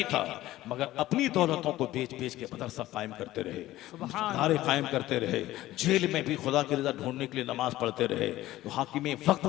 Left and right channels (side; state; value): right; quieter; 15.7 dB